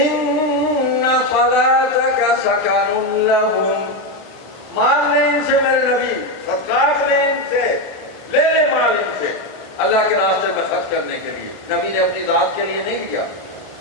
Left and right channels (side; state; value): left; late; 1.4 ms